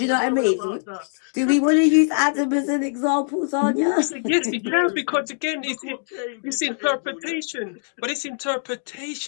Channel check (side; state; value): right; silent; digital silence